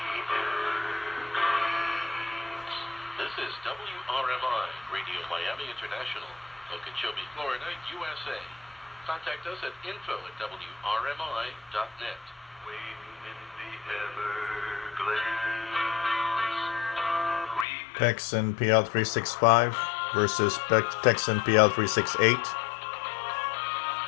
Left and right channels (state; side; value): drops out; right; at 17.7 s